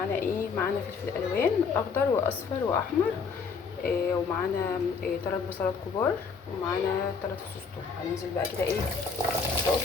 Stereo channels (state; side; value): quieter; right; 5.3 dB